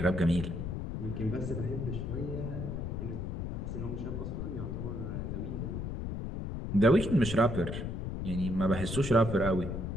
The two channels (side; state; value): left; noise; rumble, 4 dB below the sound